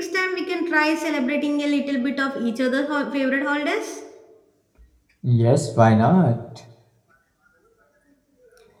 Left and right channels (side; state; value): both; identical; correlation 1.00